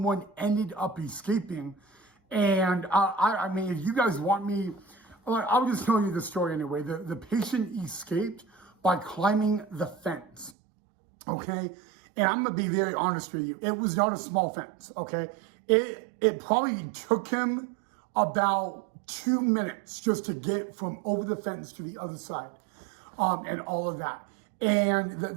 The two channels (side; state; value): left; drops out; at 10.5 s